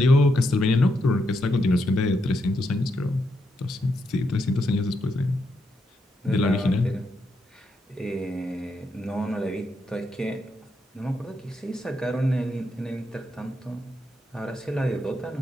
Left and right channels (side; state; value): both; normal; correlation 0.81